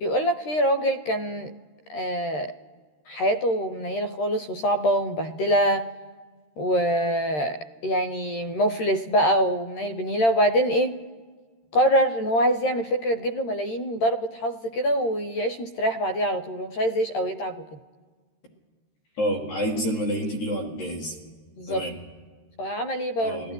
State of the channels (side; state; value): right; late; 13 ms